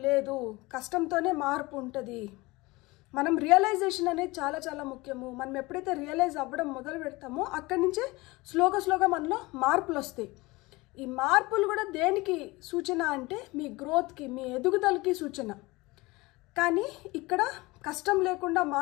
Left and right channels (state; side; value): quieter; right; 22.2 dB